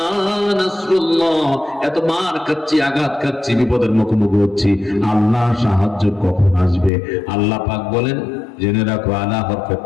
নাসরুল্লাহ, এত মার খাচ্ছি, আঘাত খাচ্ছি, বিপদের মুখোমুখি হচ্ছি, আল্লাহ সাহায্য কখন আসবে? আল্লাহ পাক বলেন, জেনে রাখো, আলা হরফে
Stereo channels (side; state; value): right; drops out; at 6.9 s